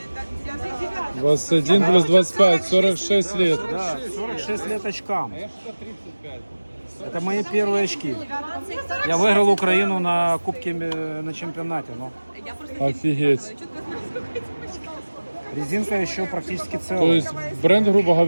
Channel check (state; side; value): inverted; both; correlation -1.00